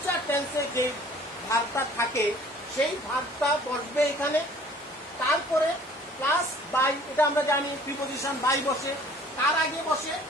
টেন্সে যে ভার্বটা থাকে সেই ভার্বটা বসবে এখানে। তারপরে প্লাস বাই, এটা আমরা জানি প্রিপজিশন বাই বসে। তার আগে বসে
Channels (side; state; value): both; normal; correlation 0.52